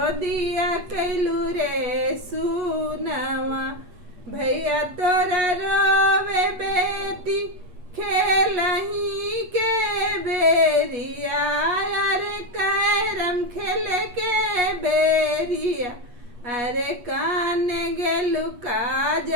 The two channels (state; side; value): late; left; 8.3 ms